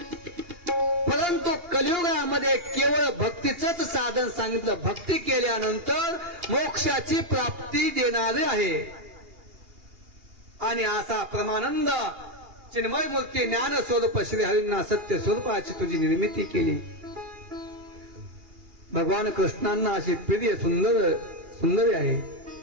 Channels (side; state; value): left; late; 2.8 ms